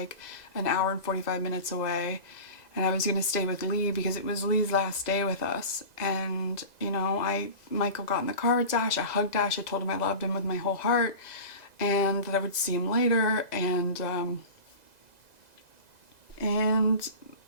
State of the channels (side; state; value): right; late; 2.0 ms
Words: an hour and 45 minutes away, and I was gonna stay with Lee because it was Lee's last day with us. And you know, Michael got in the car with Dash, I hugged Dash, I told him I loved him with my whole heart and that I would see him later. And